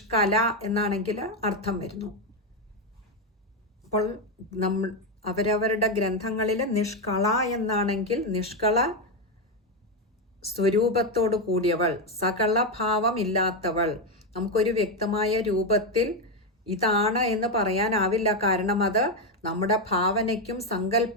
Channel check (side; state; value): both; normal; correlation 0.07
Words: എന്നാണെങ്കിൽ അർത്ഥം വരുന്നു. അപ്പോൾ അവരവരുടെ ഗ്രന്ഥങ്ങളിൽ നിഷ്കള എന്നാണെങ്കിൽ നിഷ്കള സ്വരൂപത്തോട് കൂടിയവൾ, സകല ഭാവം ഇല്ലാത്തവൾ. നമുക്കൊരു വ്യക്തമായ രൂപത്തിൽ ഇതാണ് എന്ന് പറയാനാവില്ല. കാരണം അത് നമ്മുടെ ഭാവനയ്ക്കും